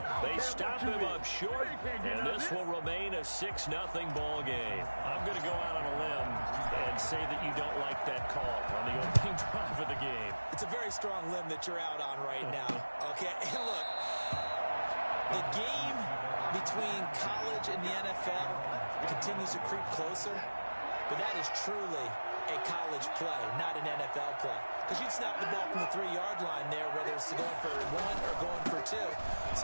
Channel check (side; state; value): both; inverted; correlation -1.00